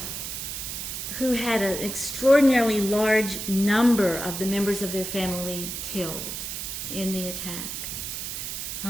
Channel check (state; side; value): noise; right; hiss, 5 dB below the sound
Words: who had an extraordinarily large number of the members of their family killed in the attack.